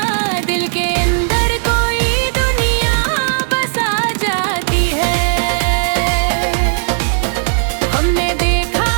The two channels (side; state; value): left; silent; digital silence